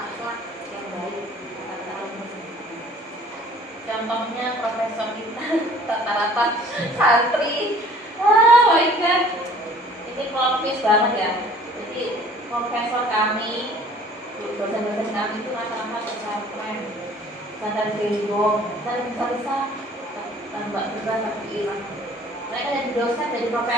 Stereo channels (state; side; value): normal; both; correlation 0.52